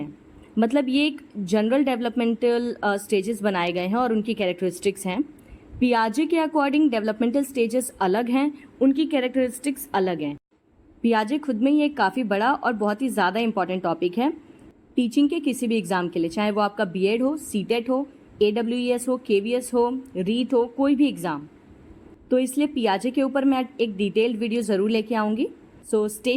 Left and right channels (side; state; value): both; identical; correlation 1.00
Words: मतलब ये एक जनरल डेवलपमेंटल स्टेजेस बनाए गए हैं और उनकी कैरेक्टरिस्टिक्स हैं। पियाजे के अकॉर्डिंग डेवलपमेंटल स्टेजेस अलग हैं, उनकी कैरेक्टरिस्टिक्स अलग हैं। पियाजे खुद में ही एक काफ़ी बड़ा और बहुत ही ज़्यादा इंपॉर्टेंट टॉपिक है टीचिंग के किसी भी एग्ज़ाम के लिए, चाहे वो आपका बीएड हो, सीटेट हो, AWES हो, KVS हो, रीट हो, कोई भी एग्ज़ाम। तो इसलिए पियाजे के ऊपर मैं एक डिटेल्ड वीडियो ज़रूर लेके आऊँगी। So stay